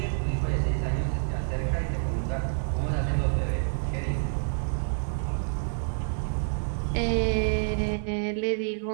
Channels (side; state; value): left; silent; digital silence